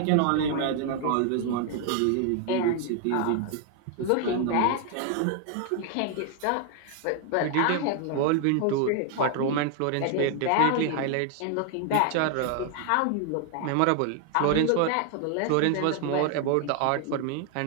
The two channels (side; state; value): both; different; correlation 0.00